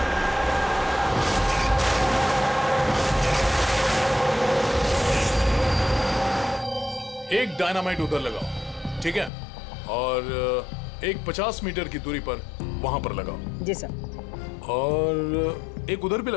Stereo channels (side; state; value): right; drops out; at 9.3 s